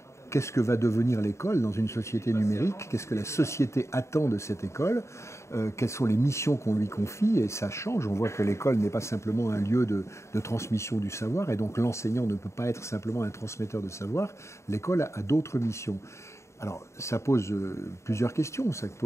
Qu'est-ce que va devenir l'école dans une société numérique? Qu'est-ce que la société attend de cette école? Quelles sont les missions qu'on lui confie? Et ça change. On voit que l'école n'est pas simplement un lieu de transmission du savoir, et donc l'enseignant ne peut pas être simplement un transmetteur de savoir. L'école a d'autres missions. Alors, ça pose plusieurs questions. Ça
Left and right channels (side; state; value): right; late; 0.14 ms